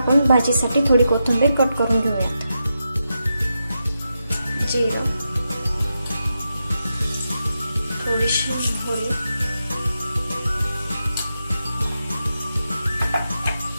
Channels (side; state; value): both; inverted; correlation -0.87